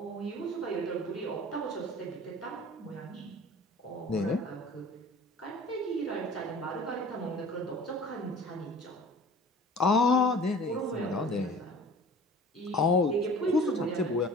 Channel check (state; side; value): normal; both; correlation 0.45